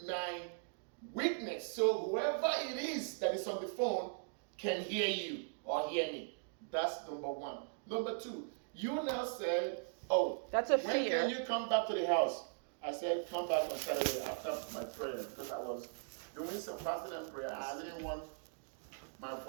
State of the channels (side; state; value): left; silent; digital silence